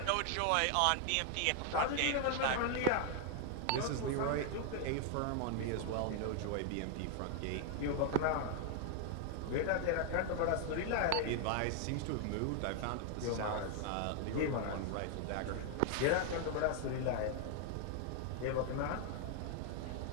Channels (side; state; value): both; different; correlation 0.00